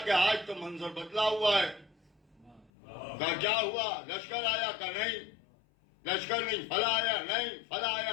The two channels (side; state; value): right; drops out; at 2.7 s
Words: کہ آج تو منظر بدلا ہوا ہے۔ کہا کیا ہوا؟ لشکر آیا؟ کہا نہیں لشکر نہیں، فلاں آیا نہیں، فلاں